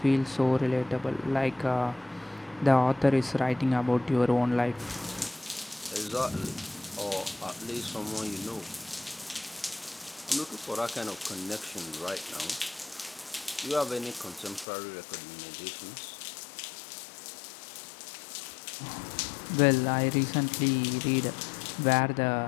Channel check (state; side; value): drops out; right; at 14.7 s